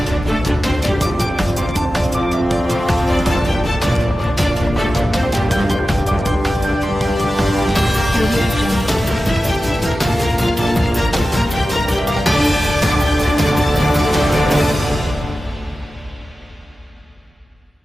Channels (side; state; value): both; normal; correlation 0.94